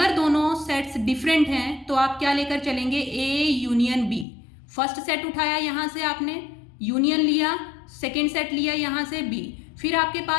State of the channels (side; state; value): right; drops out; at 4.2 s